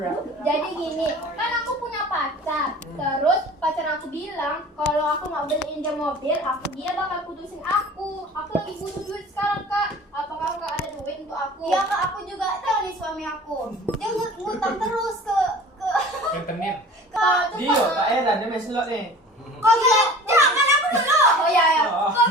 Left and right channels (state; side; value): normal; both; correlation 0.43